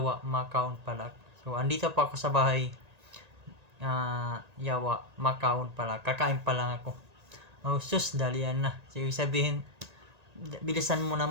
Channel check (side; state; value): left; late; 1.8 ms